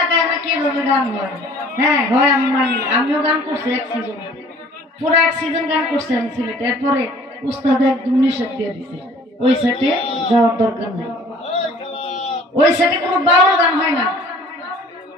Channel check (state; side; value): normal; both; correlation 0.52